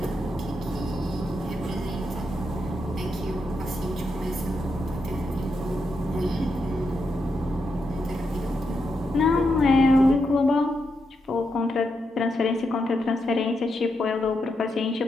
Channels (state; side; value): normal; both; correlation 0.83